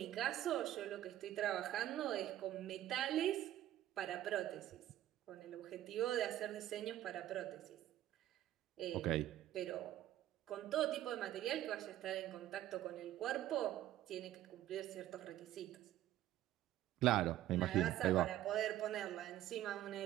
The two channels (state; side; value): quieter; left; 13.4 dB